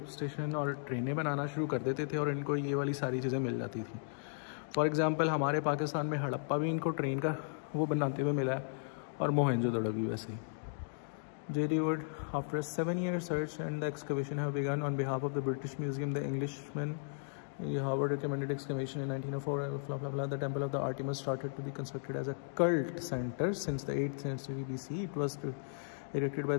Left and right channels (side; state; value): right; silent; digital silence